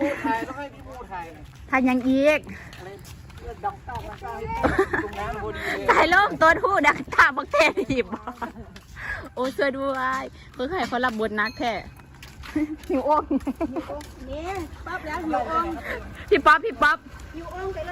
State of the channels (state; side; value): identical; both; correlation 1.00